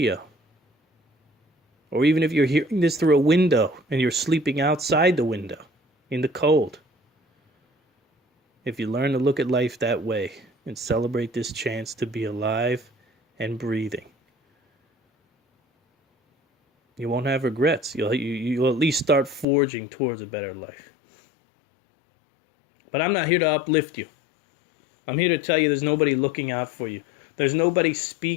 or even if you're hearing this through a window and you're sleeping outside the window in the cold. If you learn to look at life that way and celebrate this chance to be alive and breathing, you won't have regrets. You'll at least start forging towards a better life. But I'm not here to uplift you. I'm here to tell you there's nobody looking out for you. There's nobody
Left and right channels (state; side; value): drops out; right; at 19.5 s